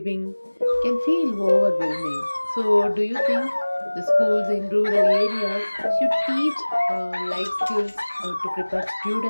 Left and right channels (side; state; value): both; inverted; correlation -1.00